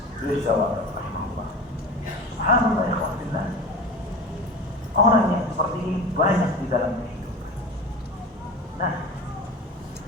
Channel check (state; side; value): normal; both; correlation 0.32